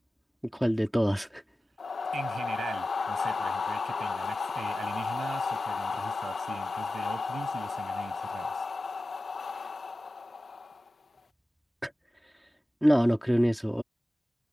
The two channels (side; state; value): both; normal; correlation 0.95